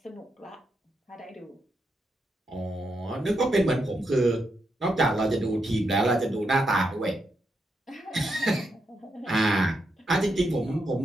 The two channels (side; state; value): both; normal; correlation 0.82